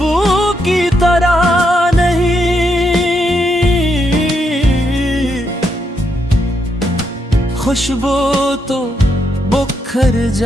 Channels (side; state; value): both; normal; correlation 0.79